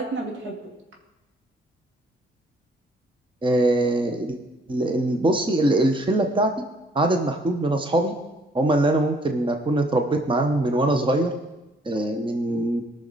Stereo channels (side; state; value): both; normal; correlation 0.63